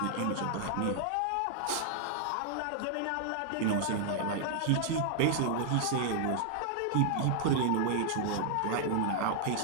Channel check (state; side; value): different; both; correlation -0.01